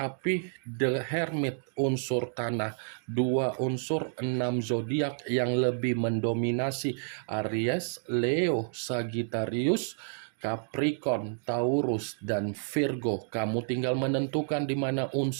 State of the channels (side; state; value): left; silent; digital silence